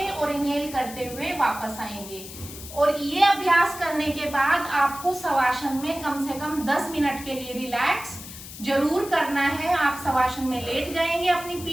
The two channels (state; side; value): noise; left; hiss, 13 dB below the sound